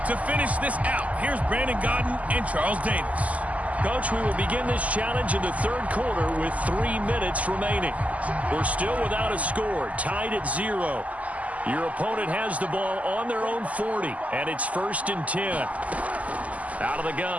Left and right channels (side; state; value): left; late; 0.072 ms